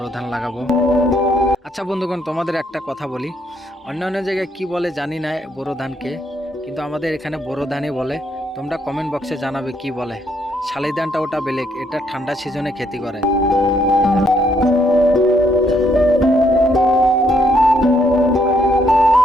ধান লাগাবো। আচ্ছা বন্ধুগণ, তোমাদের একটা কথা বলি, অন্য অন্য জায়গায় কি বলে জানি না বোরো ধানকে, কিন্তু আমাদের এখানে বোরো ধানই বলে। তোমরা কমেন্ট বক্সে জানাবে কি বলে। শালি ধানটা ওটা বেলেগ, এটা ঠান্ডা সিজনে খেতি করে।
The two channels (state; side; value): normal; both; correlation 0.72